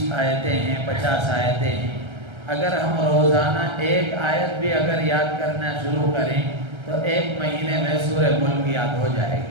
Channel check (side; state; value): left; late; 1.3 ms